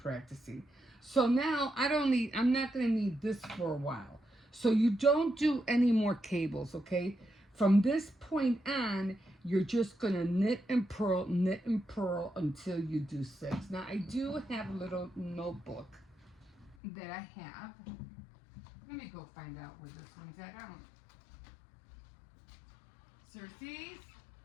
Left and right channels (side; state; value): right; drops out; at 16.8 s